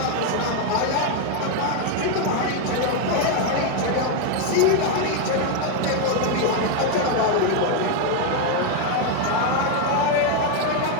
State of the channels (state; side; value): different; both; correlation 0.01